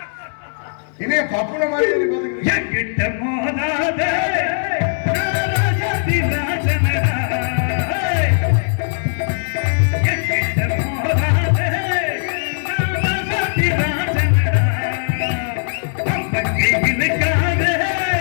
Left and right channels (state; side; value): silent; right; digital silence